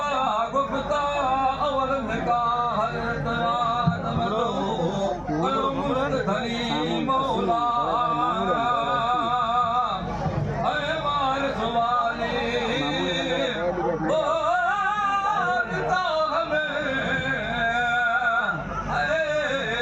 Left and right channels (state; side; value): identical; both; correlation 1.00